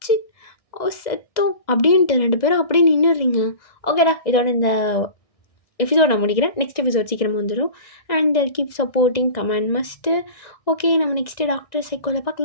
செத்தோம் அப்படின்ட்டு 2 பேரும் அப்படியே நின்றுடுறீங்க. ஓகேடா, இதோட இந்த எபிசோட் நான் முடிக்கிறேன். நெக்ஸ்ட் எபிசோட் சீக்கிரமாக வந்துடும். And keep supporting, comment must. Okay, நம்ம நெக்ஸ்ட்டு டாக்டர் சைக்கோவில்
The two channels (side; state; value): right; late; 2.0 ms